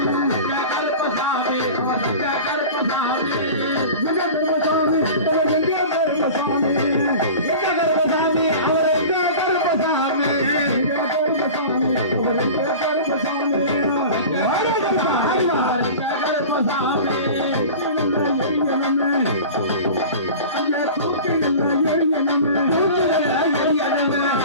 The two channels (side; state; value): both; inverted; correlation -0.36